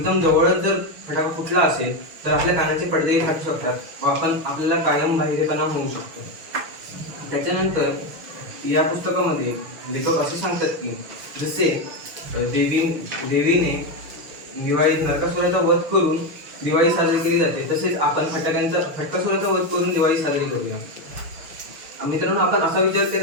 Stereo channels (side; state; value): left; late; 6.4 ms